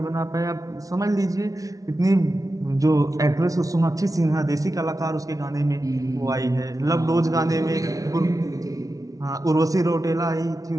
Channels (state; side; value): late; left; 0.17 ms